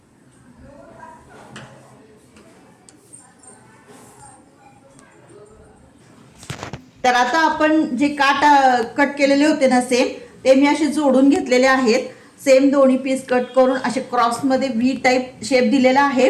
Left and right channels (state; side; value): identical; both; correlation 1.00